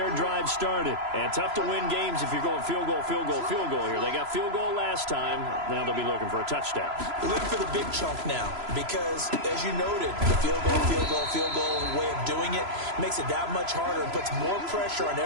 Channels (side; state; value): left; late; 3.0 ms